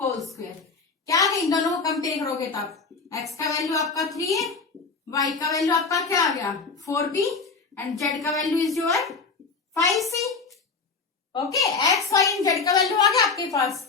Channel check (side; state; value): right; quieter; 4.6 dB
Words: होल स्क्वायर। क्या है? इन दोनों को कंपेयर करोगे तब x का वैल्यू आपका 3 है, y का वैल्यू आपका क्या आ गया? 4b एंड z का value is your 5c। Okay, x, y and z का वैल्यू आ गया आपके पास।